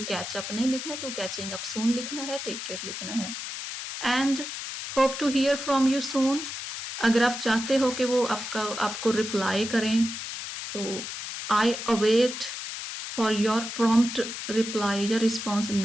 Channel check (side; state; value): left; noise; hiss, 7 dB below the sound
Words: कैच अप नहीं लिखना, टू कैचिंग अप सून लिखना है, टेक केयर लिखना है। And hope to hear from you soon, अगर आप चाहते हो कि वो आपको रिप्लाई करें तो I await for your prompt reply या रिस्पॉन्स